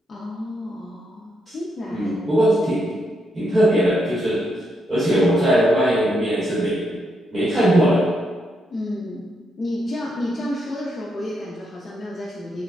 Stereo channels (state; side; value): normal; both; correlation 0.79